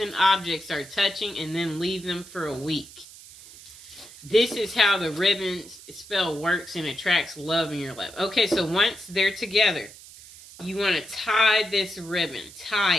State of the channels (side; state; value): right; noise; hiss, 18 dB below the sound